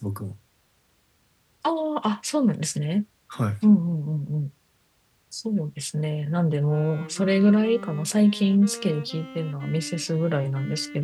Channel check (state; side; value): identical; both; correlation 1.00